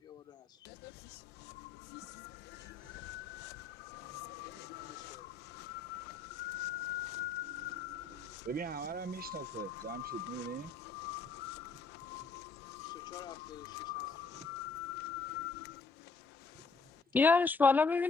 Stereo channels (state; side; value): quieter; right; 4.3 dB